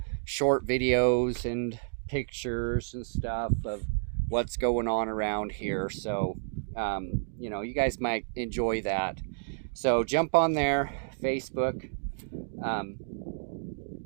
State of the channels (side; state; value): left; silent; digital silence